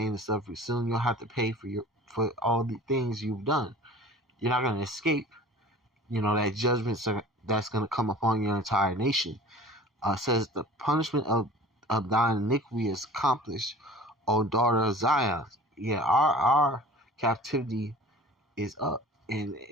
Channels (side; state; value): both; normal; correlation 0.43